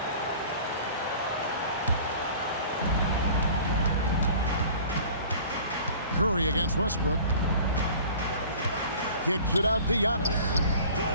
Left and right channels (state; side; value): inverted; both; correlation -0.45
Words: Curry against Westbrook. Kicks it out to Giannis.